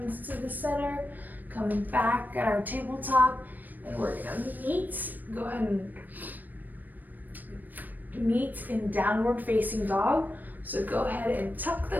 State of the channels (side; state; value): left; late; 0.087 ms